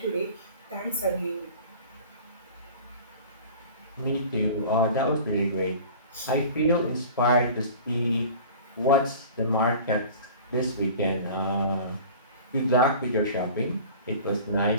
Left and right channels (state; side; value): inverted; both; correlation -0.41